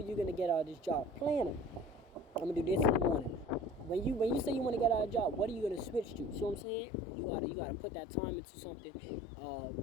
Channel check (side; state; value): right; drops out; at 6.7 s